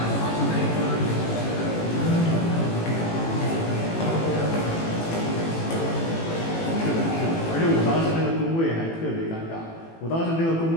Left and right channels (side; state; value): right; late; 18 ms